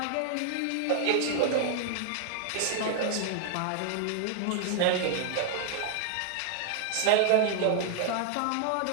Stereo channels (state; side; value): different; both; correlation 0.00